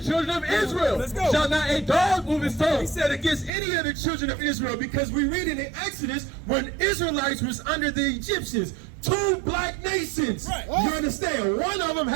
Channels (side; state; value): left; drops out; at 3.5 s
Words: of Israel shall not a dog move his tongue. He said against any of the children of Israel because we read it in Exodus when Israelites was under the Egyptians. Two black nations. Right. You understand? One of them